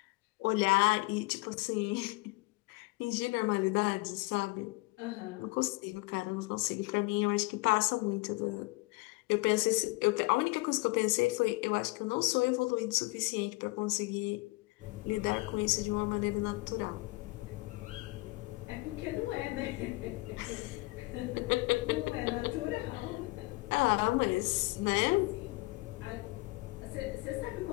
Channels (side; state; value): right; quieter; 24.0 dB